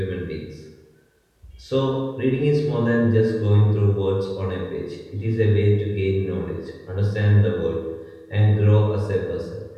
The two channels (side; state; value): both; identical; correlation 1.00